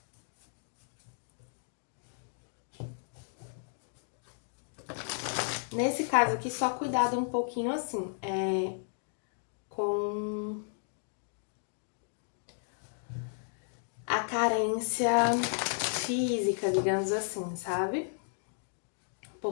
Nesse caso aqui, só cuidado um pouquinho assim, com a carência física, digamos assim, sabe?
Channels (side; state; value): right; silent; digital silence